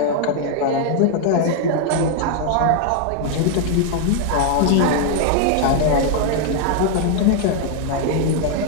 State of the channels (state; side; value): different; both; correlation 0.00